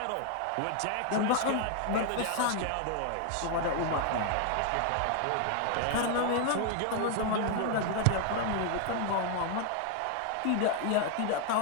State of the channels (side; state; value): both; different; correlation 0.00